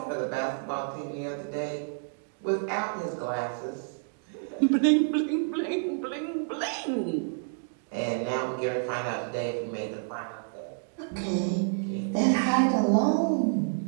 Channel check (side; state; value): left; silent; digital silence